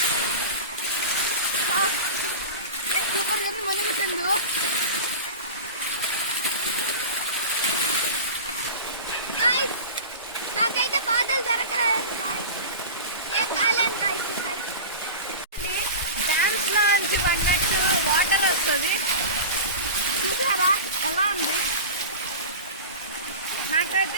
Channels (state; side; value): inverted; both; correlation -0.31